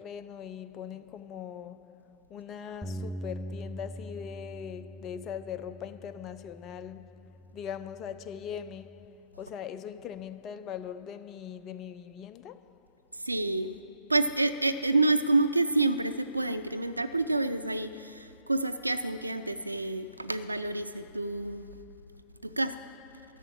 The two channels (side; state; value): both; inverted; correlation -0.71